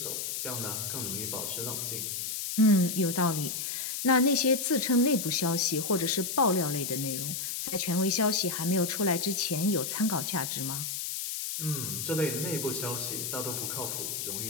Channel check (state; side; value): noise; left; hiss, 3 dB below the sound